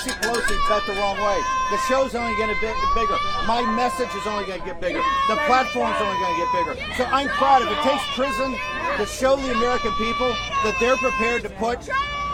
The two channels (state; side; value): identical; both; correlation 1.00